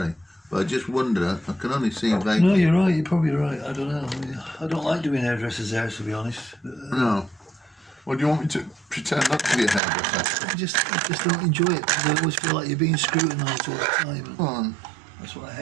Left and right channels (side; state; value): left; drops out; at 9.8 s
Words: But I just wonder. I can only see vaguely. No, you're right. You're probably right. I don't know. I don't like doing hairdressers' hair, to be honest. No. Well, do you want me to pretend not to be a hairdresser? I just don't enjoy it because I always feel like you're being scrutinised all the time. Go on. That's what I